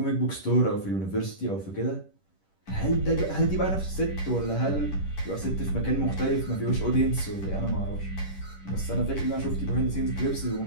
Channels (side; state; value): right; late; 10 ms